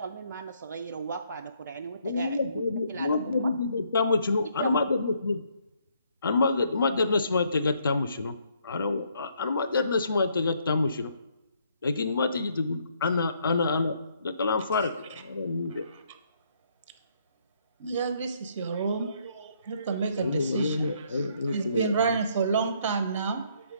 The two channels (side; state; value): both; inverted; correlation -0.69